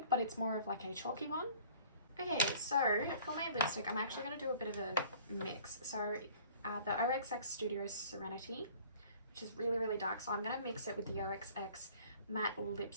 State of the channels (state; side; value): inverted; both; correlation -0.51